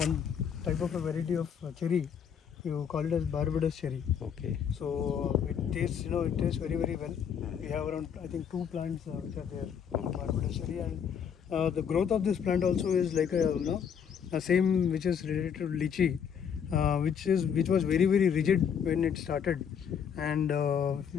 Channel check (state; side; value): quieter; right; 7.7 dB